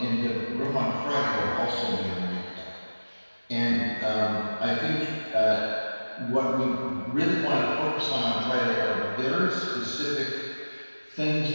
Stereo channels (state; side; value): inverted; both; correlation -1.00